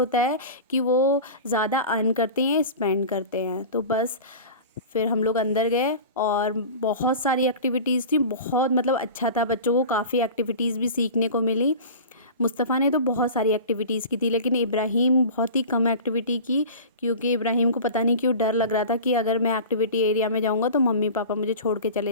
है कि वो ज़्यादा अर्न करते हैं, स्पेंड करते हैं। तो बस फिर हम लोग अंदर गए और बहुत सारी एक्टिविटीज़ थी, बहुत मतलब अच्छा था, बच्चों को काफ़ी एक्टिविटीज़ भी सीखने को मिली। मुस्तफ़ा ने तो बहुत सारी एक्टिविटीज़ की थी, लेकिन इब्राहिम बहुत ही कम एक्टिविटी की, क्योंकि इब्राहिम को पता नहीं क्यों डर लग रहा था कि अगर मैं एक्टिविटी एरिया में जाऊंगा तो मम्मी पापा मुझे छोड़ के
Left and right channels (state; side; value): inverted; both; correlation -0.35